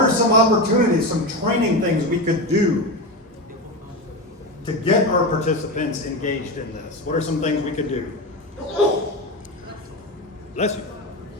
are some opportunities, some training things we could do to get our participants engaged in this? What are some things we could do? Bless you.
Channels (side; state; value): both; normal; correlation 0.19